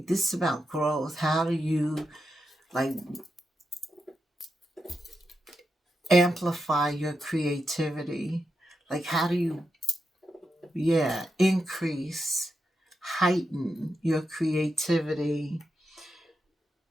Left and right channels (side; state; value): both; normal; correlation 0.86